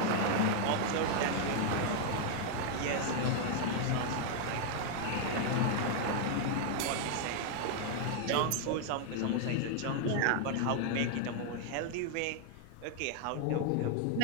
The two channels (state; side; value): different; both; correlation 0.00